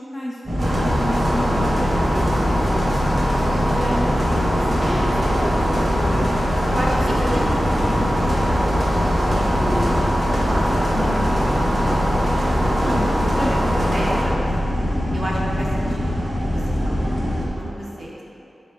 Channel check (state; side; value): normal; both; correlation 0.94